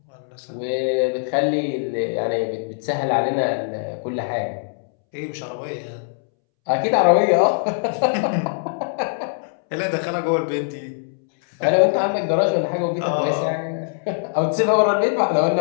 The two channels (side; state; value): right; silent; 64 dB below the other